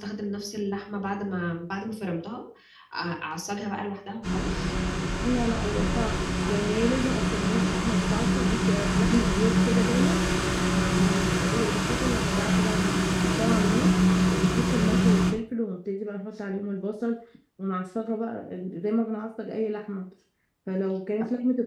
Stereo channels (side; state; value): both; identical; correlation 1.00